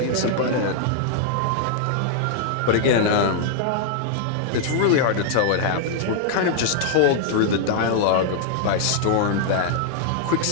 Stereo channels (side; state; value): both; different; correlation -0.01